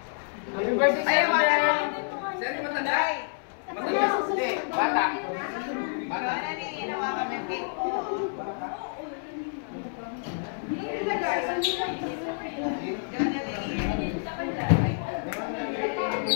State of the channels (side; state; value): right; silent; 59 dB below the other